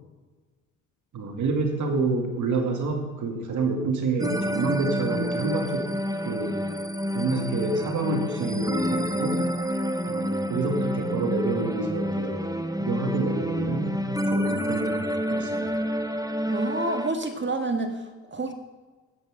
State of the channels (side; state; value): both; normal; correlation 0.54